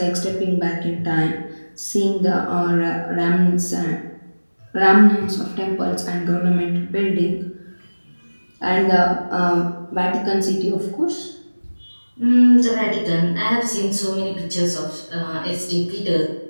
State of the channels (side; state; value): both; inverted; correlation -1.00